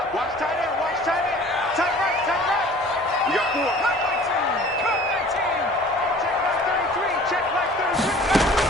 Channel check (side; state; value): both; normal; correlation 0.48